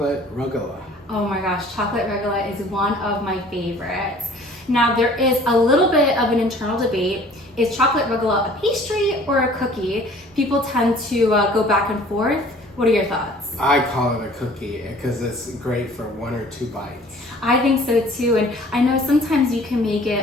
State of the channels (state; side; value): normal; both; correlation 0.51